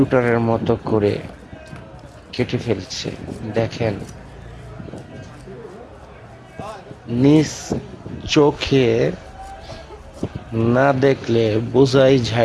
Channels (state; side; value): identical; both; correlation 1.00